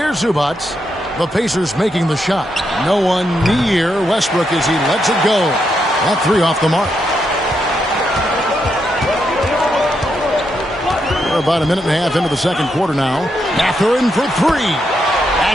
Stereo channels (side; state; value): both; normal; correlation 0.81